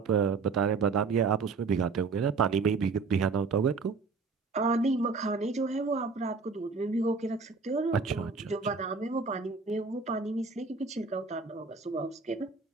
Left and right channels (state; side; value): quieter; left; 4.6 dB